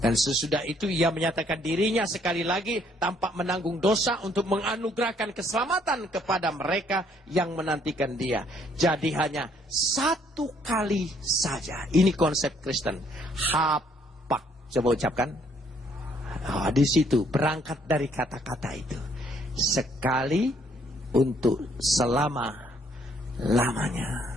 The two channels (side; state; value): both; normal; correlation 0.66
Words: sesudah itu ia menyatakan dirinya sekali lagi tanpa menanggung dosa untuk menganugerahkan keselamatan kepada mereka yang menantikan dia. Jadi hanya satu kali saja. Ini konsep Kristen. Hapak. Coba ucapkan. Oh, di situ berangkat dari kata-kata itu. Sekali untuk